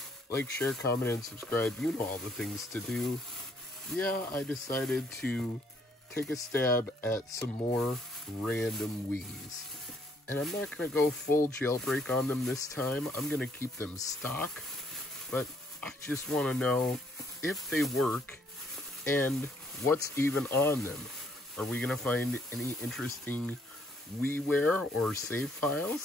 Like, share, comment, and subscribe. You know all the things to do. Yeah, I decided to take a stab at some more random Wiis. And I'm not going to go full jailbreak on them this time. I'm going to keep them stock. But I just want to know if they work and what's even on them. Are we going to find any interesting WiiWare or save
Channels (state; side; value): normal; both; correlation 0.67